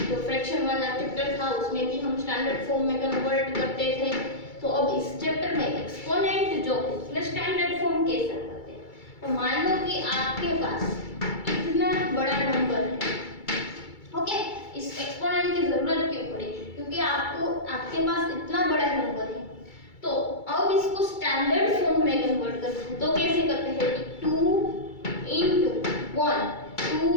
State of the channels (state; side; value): late; right; 2.3 ms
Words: जो फ्रैक्शन वाला चैप्टर था उसमें भी हम स्टैंडर्ड फॉर्म में कन्वर्ट करते थे। तो अब इस चैप्टर में एक्सपोनेंट जो है उसमें स्टैंडर्ड फॉर्म कैसे करते हैं। तो मान लो कि आपके पास इतना बड़ा नंबर है, ओके, इस एक्सपोनेंट की जरूरत क्यों पड़ी, क्योंकि आपके पास इतना बड़ा नंबर है। तो अब इसको स्टैंडर्ड फॉर्म में कन्वर्ट करते हैं, तो कैसे करते हैं 2 × 1, 2